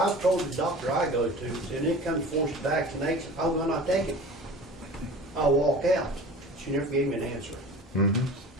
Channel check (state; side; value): normal; both; correlation 0.39